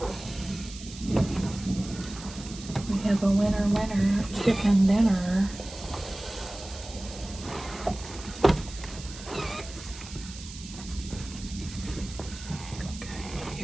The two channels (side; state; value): right; noise; hiss, 14 dB below the sound